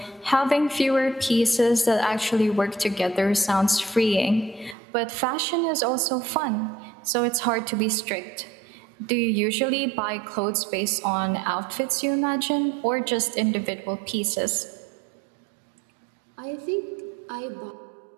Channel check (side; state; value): left; drops out; at 4.8 s